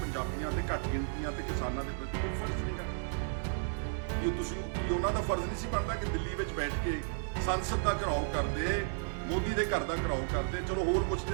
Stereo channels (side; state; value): left; silent; digital silence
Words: ਪੰਜਾਬੀਆਂ ਤੇ ਘੱਟ ਗਿਣਤੀਆਂ ਤੇ ਕਿਸਾਨਾਂ ਦੇ ਪ੍ਰਤੀ ਕੋਈ ਫਰਜ਼ ਨਹੀਂਗਾ? ਕੀ ਉਹਨਾਂ ਦਾ ਫਰਜ਼ ਨਹੀਂ ਸੀ ਬਣਦਾ ਕਿ ਦਿੱਲੀ ਵਿੱਚ ਬੈਠ ਕੇ ਸੰਸਦ ਦਾ ਘਿਰਾਓ ਕਰਦੇ, ਮੋਦੀ ਦੇ ਘਰ ਦਾ ਘਿਰਾਓ ਕਰਦੇ? ਚਲੋ ਹੋਰ ਕੁਝ ਨਹੀਂ